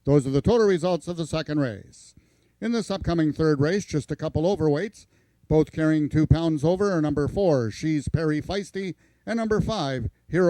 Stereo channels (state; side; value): identical; both; correlation 1.00